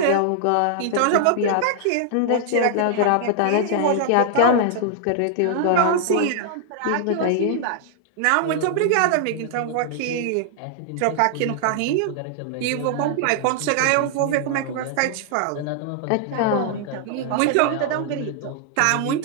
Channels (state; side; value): different; both; correlation -0.01